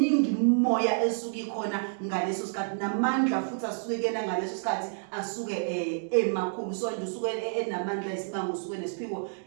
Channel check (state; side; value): silent; left; digital silence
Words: imimoya esuke ikhona ngaleso sikhathi namandla futhi asuke kuyena ngaleso sikhathi asuke emakhulu so nje usuke enamandla esimanga usuke nesiphiwo